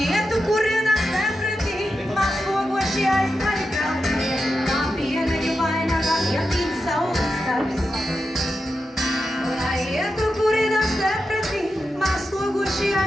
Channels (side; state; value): both; normal; correlation 0.89